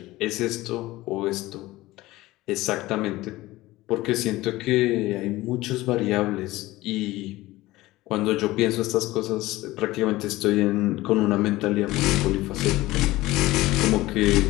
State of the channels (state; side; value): quieter; right; 18.3 dB